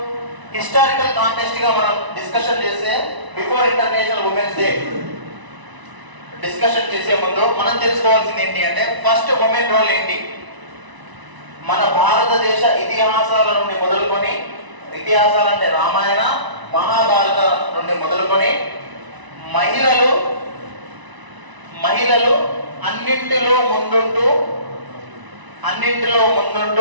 హిస్టారికల్ కాంటెక్స్ట్ గా మనం డిస్కషన్ చేస్తే before international women's day discussion చేసే ముందు మనం తెలుసుకోవాల్సింది ఏంటి అంటే ఫస్ట్ ఉమెన్ రోల్ ఏంటి. మన భారతదేశ ఇతిహాసాల నుండి మొదలుకొని, ఇతిహాసాలంటే రామాయణ మహాభారత నుండి మొదలుకొని మహిళలు అన్నింటిలో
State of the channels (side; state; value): left; late; 1.0 ms